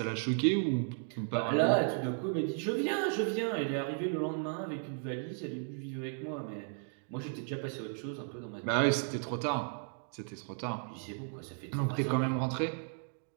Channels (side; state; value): left; silent; 55 dB below the other